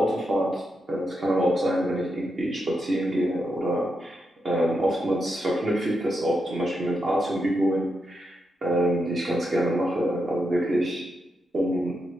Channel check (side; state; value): both; normal; correlation 0.85